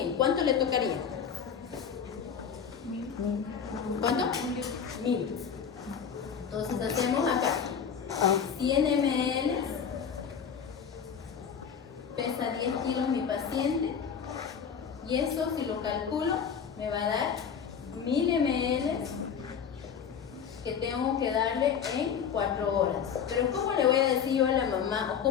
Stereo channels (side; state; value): right; quieter; 7.2 dB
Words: ¿Cuánto le tocaría? 1000. ¿Cuánto? 1000. Entonces hacemos acá 100 ml, pesa 10 kilos mi paciente, y eso si lo calculo me va a dar 1000 ml que tengo que darle en 4 horas. Pero ¿cómo le voy a decir yo a la mamá, o